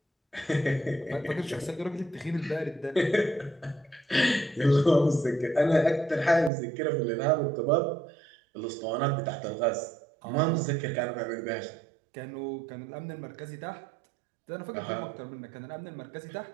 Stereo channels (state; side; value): drops out; left; at 6.5 s